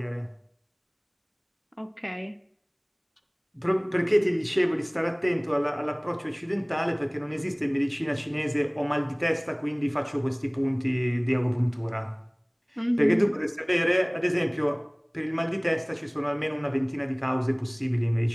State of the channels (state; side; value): identical; both; correlation 1.00